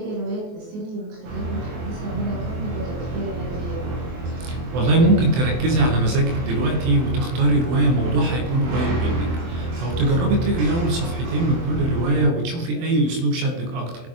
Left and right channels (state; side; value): late; left; 24 ms